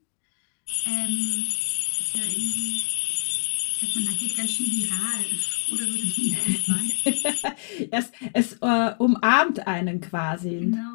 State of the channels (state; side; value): silent; right; 56 dB below the other